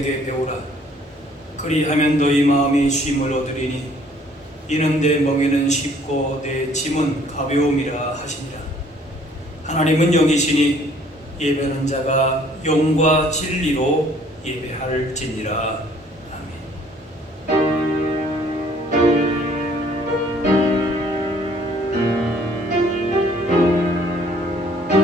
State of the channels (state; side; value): normal; both; correlation 0.59